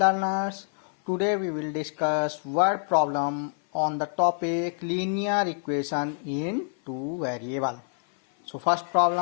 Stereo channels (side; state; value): right; silent; 57 dB below the other